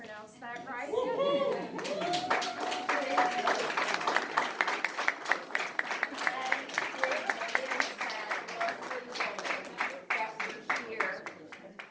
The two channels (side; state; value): both; identical; correlation 1.00